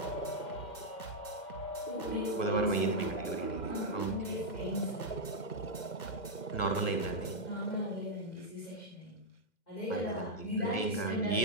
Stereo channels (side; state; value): right; late; 2.1 ms